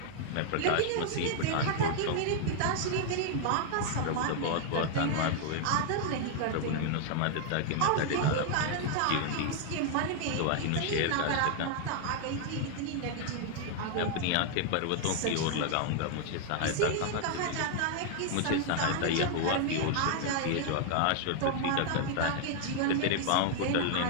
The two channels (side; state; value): both; different; correlation 0.00